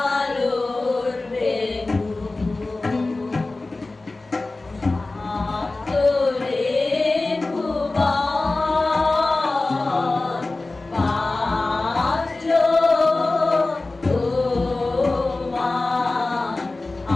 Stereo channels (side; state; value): right; quieter; 3.2 dB